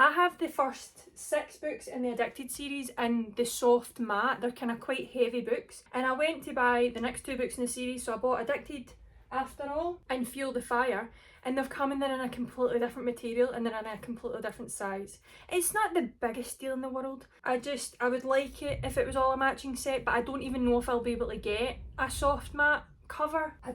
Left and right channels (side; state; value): both; identical; correlation 1.00